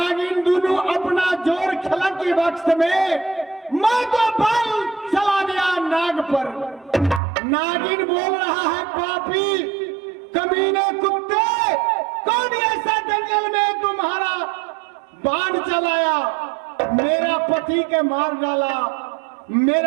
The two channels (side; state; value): left; drops out; at 7.2 s